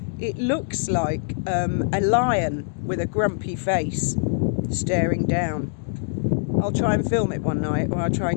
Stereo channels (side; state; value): right; silent; digital silence